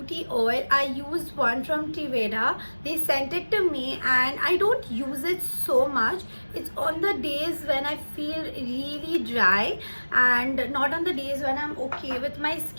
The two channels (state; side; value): inverted; both; correlation -1.00